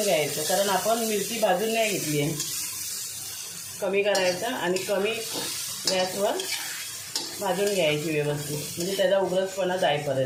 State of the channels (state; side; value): identical; both; correlation 1.00